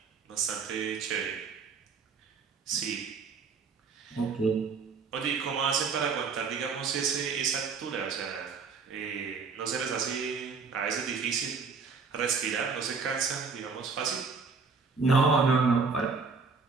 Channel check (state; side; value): quieter; left; 5.1 dB